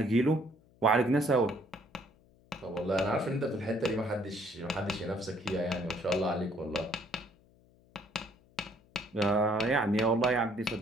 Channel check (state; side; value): noise; left; hum, 30 dB below the sound